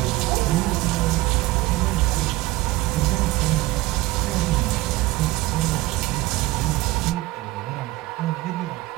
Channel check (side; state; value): left; quieter; 18.9 dB